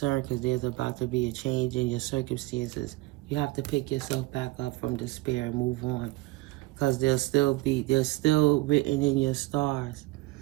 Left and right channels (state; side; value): quieter; left; 20.5 dB